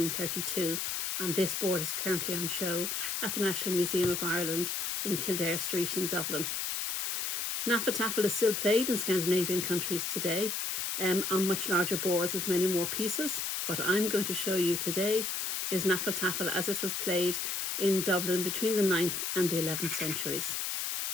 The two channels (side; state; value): left; noise; hiss, 1 dB below the sound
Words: and this board is currently on show at the National Museum of Ireland in Kildare Street in Dublin. Hnefatafl is still played in Scandinavian countries today on much larger boards with many more pieces. What I'm going to show you today is Hnefatafl as it was played in Dublin between the 9th and the 11th centuries.